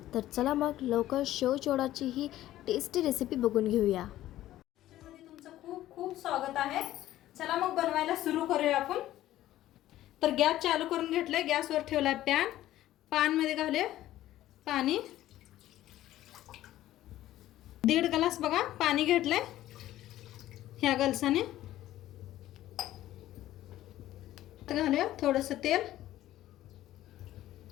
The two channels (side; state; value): right; quieter; 14.1 dB